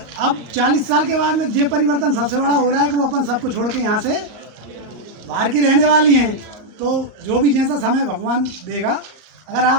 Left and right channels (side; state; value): left; late; 38 ms